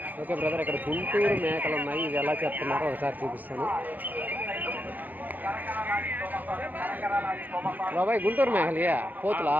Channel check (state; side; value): late; left; 0.084 ms